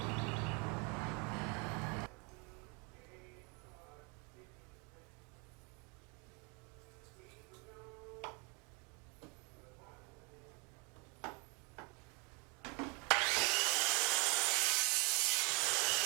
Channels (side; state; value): left; quieter; 32.3 dB